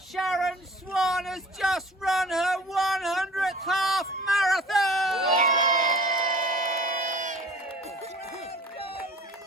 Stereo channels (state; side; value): normal; both; correlation 0.45